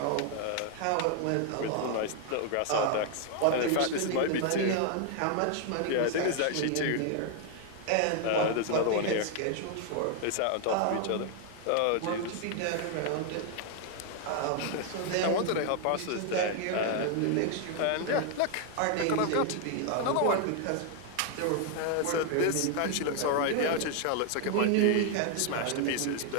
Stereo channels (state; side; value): different; both; correlation 0.00